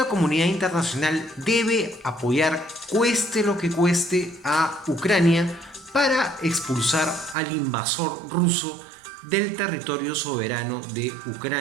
comunidad internacional debe apoyar, cueste lo que cueste, a Ucrania para expulsar al invasor ruso del territorio soberano de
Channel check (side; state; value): left; drops out; at 7.4 s